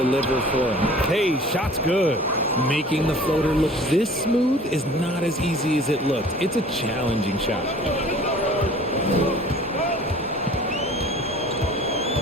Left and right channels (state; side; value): normal; both; correlation 0.47